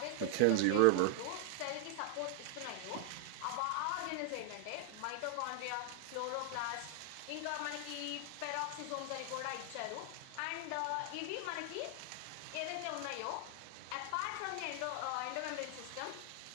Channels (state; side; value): different; both; correlation 0.00